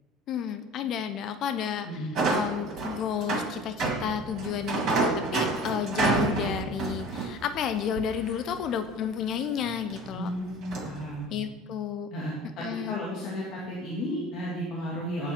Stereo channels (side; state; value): both; normal; correlation 0.41